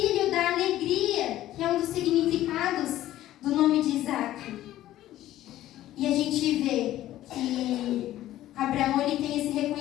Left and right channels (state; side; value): quieter; right; 14.0 dB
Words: da alegria, que é um dos significados do nome de Isaque. E a gente vê que Abraão ele tem esse